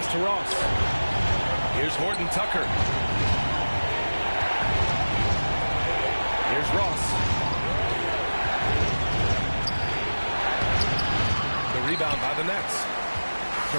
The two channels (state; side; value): inverted; both; correlation -1.00